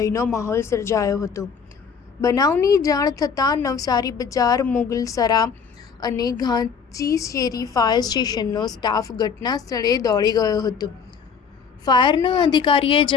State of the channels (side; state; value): right; quieter; 6.3 dB